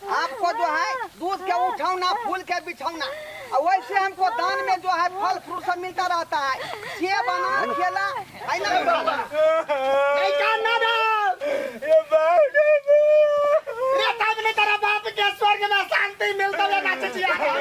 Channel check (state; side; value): identical; both; correlation 1.00